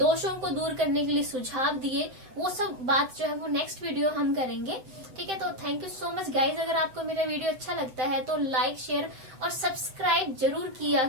को दूर करने के लिए सुझाव दिए, वो सब बात जो है वो नेक्स्ट वीडियो हम करेंगे। ठीक है, तो thank you so much guys. अगर आपको मेरा वीडियो अच्छा लगता है तो लाइक, शेयर और सब्सक्राइब जरूर किया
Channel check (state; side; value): late; left; 7.7 ms